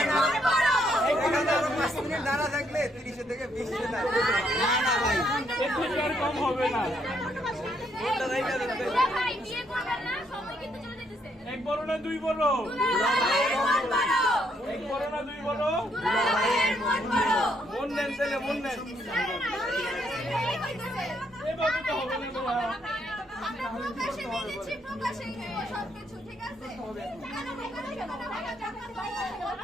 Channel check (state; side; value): normal; both; correlation 0.72